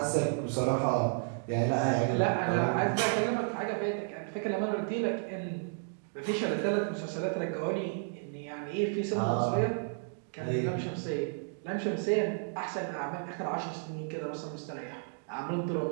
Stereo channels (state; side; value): silent; left; digital silence